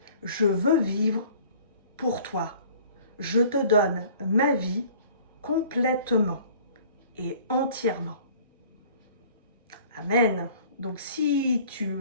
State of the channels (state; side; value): inverted; both; correlation -0.51